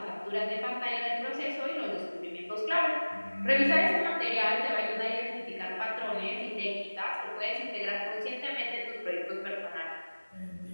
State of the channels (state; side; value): inverted; both; correlation -1.00